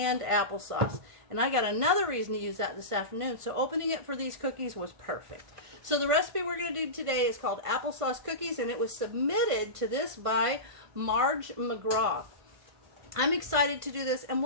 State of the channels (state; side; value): late; left; 1.5 ms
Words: applesauce. And I got another reason to use that this afternoon, so opening it for these cookies was perfect. So the recipe we're going to do today is called Applesauce Cookies, and it was submitted to this by Marge McGraw. I'm excited to do this, and